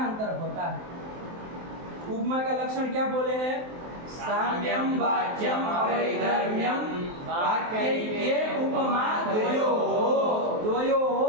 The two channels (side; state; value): left; late; 23 ms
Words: होता है? उपमा का लक्षण क्या बोले हैं? साम्यं वाच्यं अवैधर्म्यं वाक्यैक्ये उपमा द्वयोः